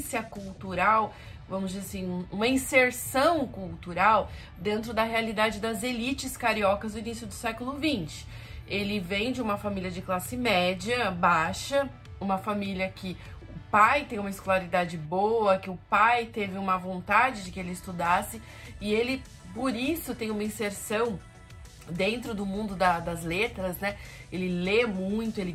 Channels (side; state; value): both; identical; correlation 1.00